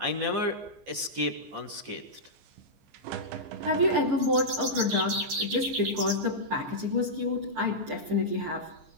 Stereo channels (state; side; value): late; left; 15 ms